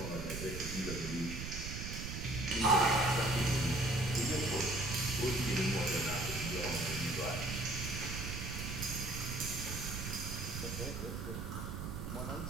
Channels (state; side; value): noise; right; rumble, 5 dB below the sound